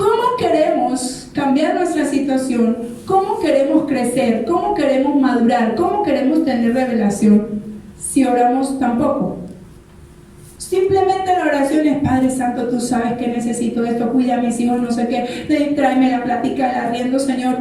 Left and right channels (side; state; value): both; identical; correlation 1.00